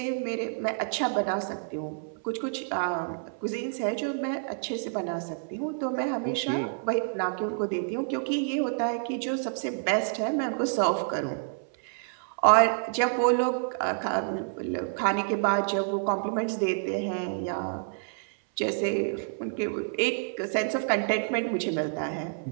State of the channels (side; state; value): left; silent; 59 dB below the other